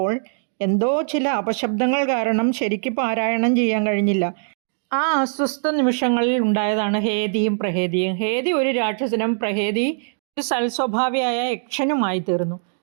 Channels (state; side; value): silent; left; digital silence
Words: എന്തോ ചില അപശബ്ദങ്ങൾ കാരണം ശരിക്ക് പാരായണം ചെയ്യാൻ കഴിഞ്ഞില്ല. ആ അസ്വസ്ഥ നിമിഷങ്ങളിൽ ഉണ്ടായതാണ് ഹേതിയും പ്രഹേതിയും. ഹേതി ഒരു രാക്ഷസനും പ്രഹേതി ഒരു സൽസ്വഭാവിയായ യക്ഷനുമായി തീർന്നു.